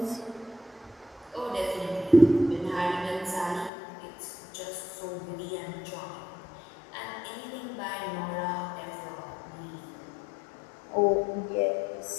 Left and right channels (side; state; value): right; drops out; at 3.7 s